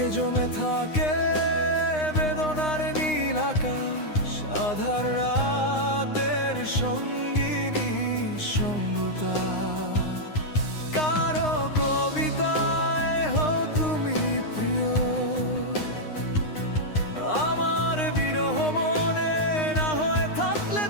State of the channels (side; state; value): right; late; 9.7 ms